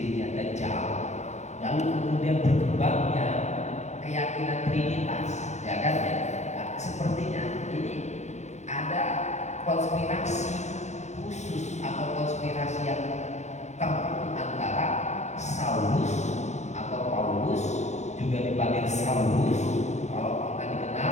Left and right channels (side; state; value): right; late; 0.33 ms